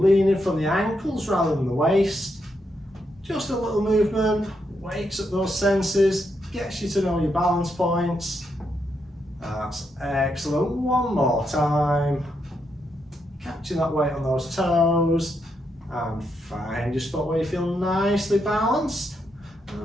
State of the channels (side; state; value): both; normal; correlation 0.81